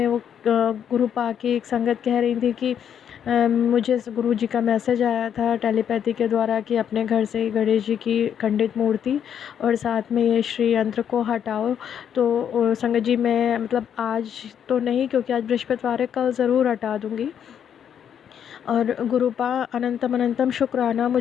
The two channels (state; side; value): quieter; right; 8.7 dB